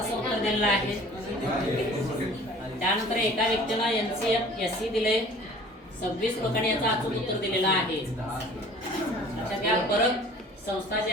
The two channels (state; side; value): normal; both; correlation 0.48